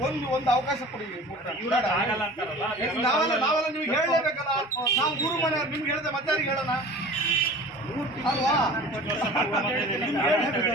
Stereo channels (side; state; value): both; normal; correlation 0.41